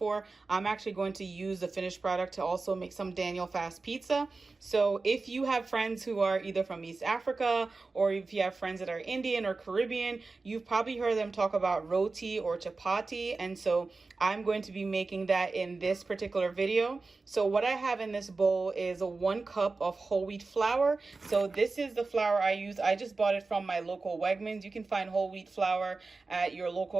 I'm actually going to use the finished product to also make some Daniel fast pizza. So if you have friends who are either from East Africa, or if you have friends that are Indian or Caribbean, you've probably heard them talk about roti or chapati, and so I'm going to be making that in this particular video. So what I have in this bowl is 1 cup of whole wheat flour. So this is the flour I use. I just bought it from my local Wegmans. You can find whole wheat flour at your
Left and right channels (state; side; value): quieter; left; 3.8 dB